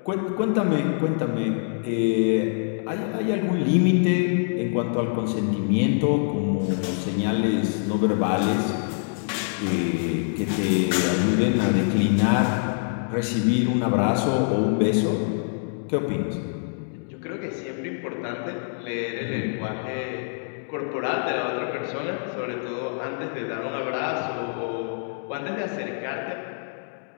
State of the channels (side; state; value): right; silent; digital silence